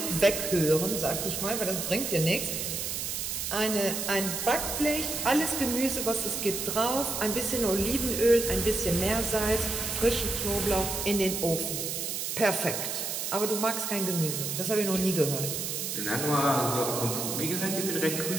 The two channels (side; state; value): right; noise; hiss, 3 dB below the sound